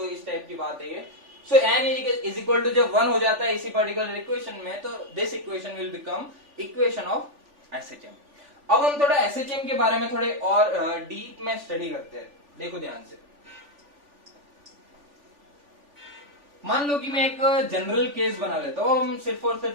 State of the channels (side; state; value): left; late; 3.4 ms